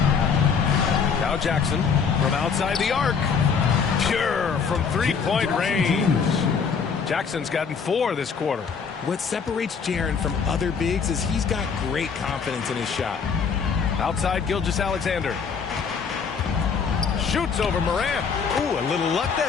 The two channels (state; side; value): quieter; right; 6.1 dB